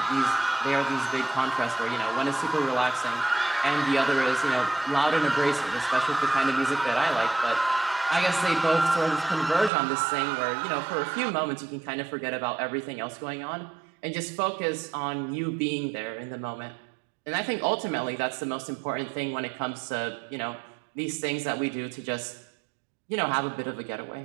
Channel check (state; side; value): drops out; left; at 9.7 s